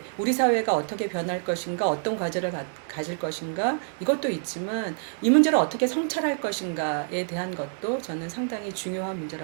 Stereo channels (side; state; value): left; silent; 60 dB below the other